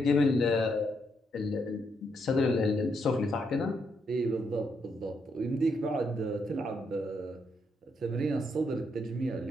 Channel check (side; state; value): both; normal; correlation 0.77